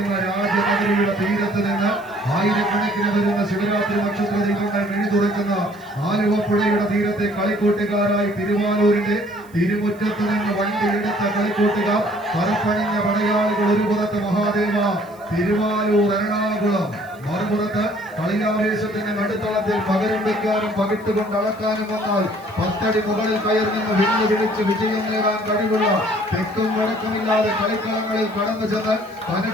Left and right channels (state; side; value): noise; right; hiss, 28 dB below the sound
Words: രാജനഗരിയുടെ തീരത്ത് നിന്ന് ആയിരക്കണക്കിന് വരുന്ന ശിവരാത്രി നക്ഷത്ര ദീപങ്ങൾ മിഴിതുറക്കുന്ന ആലുവ പുഴയുടെ തീരത്തെ കളിക്കൂട്ടുകാരായി തിരുവാലൂരിന്റെ തിരുമുറ്റത്ത് നിന്ന് വണ്ടിയെടുത്ത കളിക്കൂട്ടുകാർ, പറപ്പണിഞ്ഞ പടയാളികൾ. ഒരു പുറത്ത് മഹാദേവ, തിരുവാലൂർ, എറണാകുളം. മറുപുറത്ത് കളിയാവേശത്തിന്റെ നടുത്തളത്തിൽ പകരം വയ്ക്കാനും പകിട്ടുകൊണ്ട് അളക്കാനും വന്നാൽ 10 അടി മുകളിൽ കയറി നിന്ന് വെല്ലുവിളിച്ച് വിജയം നേടാൻ കഴിവുള്ള തെക്കും വടക്കുമില്ലാതെ കളിക്കളങ്ങളിൽ കടന്നു ചെന്ന്